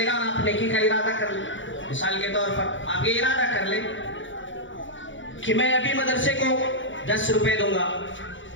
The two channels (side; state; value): right; late; 0.55 ms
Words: گا، اور آپ نیکی کا ارادہ کر لیں. مثال کے طور پر آپ یہ ارادہ کر لیں کہ میں ابھی مدرسے کو 10 روپے دوں گا،